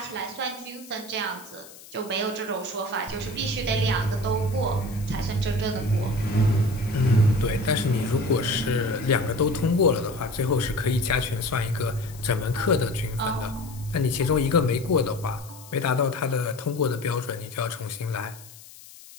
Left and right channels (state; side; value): noise; left; hiss, 19 dB below the sound